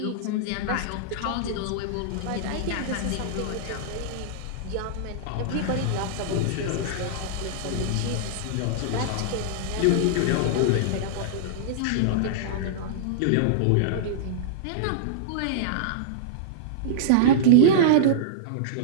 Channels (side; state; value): both; different; correlation -0.02